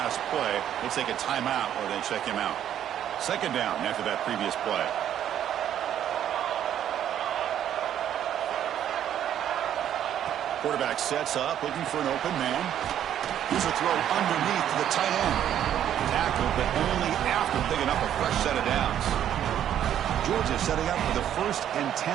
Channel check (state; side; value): quieter; left; 10.5 dB